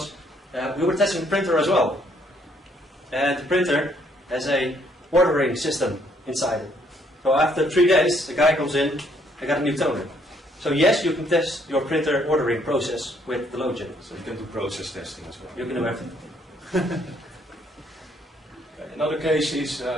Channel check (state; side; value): normal; both; correlation 0.67